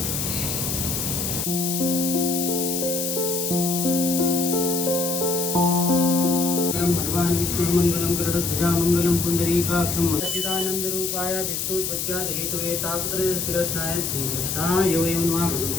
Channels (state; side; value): noise; left; hiss, 2 dB below the sound